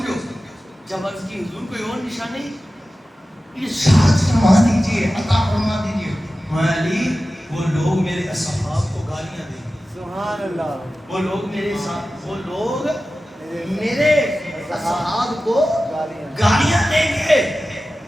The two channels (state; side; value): normal; both; correlation 0.94